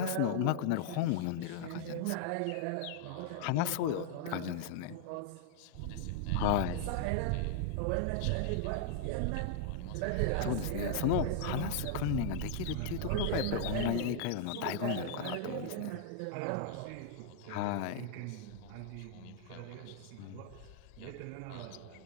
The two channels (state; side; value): different; both; correlation -0.01